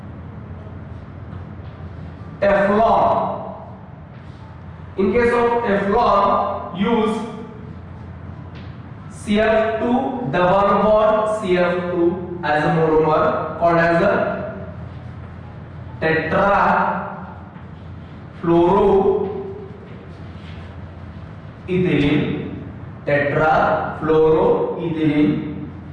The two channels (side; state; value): both; identical; correlation 1.00